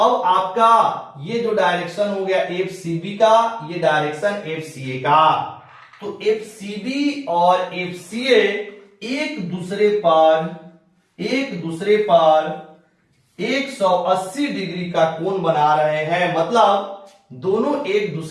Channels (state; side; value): identical; both; correlation 1.00